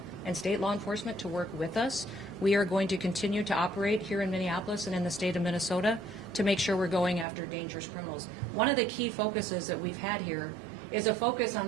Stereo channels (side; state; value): left; drops out; at 7.2 s